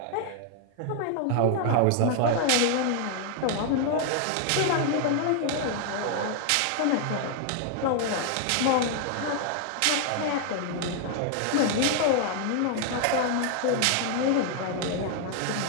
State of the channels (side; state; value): both; different; correlation 0.00